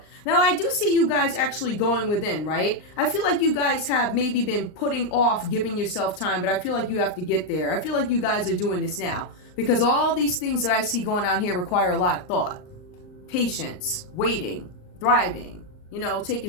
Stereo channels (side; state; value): right; late; 39 ms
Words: Now, I do see you guys actually going within, right? I feel like you guys have maybe been putting off giving yourself time, but I feel like you have to get there. I feel like you guys are doing this now because all these things that I see going on here require a lot of thought, patience, waiting, thriving, taking